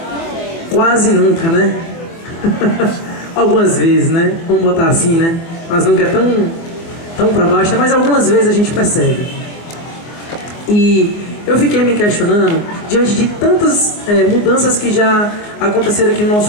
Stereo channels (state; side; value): late; right; 24 ms